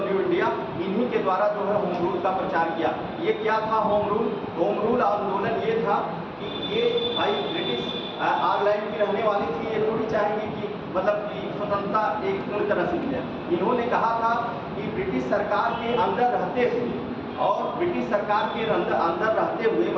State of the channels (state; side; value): identical; both; correlation 1.00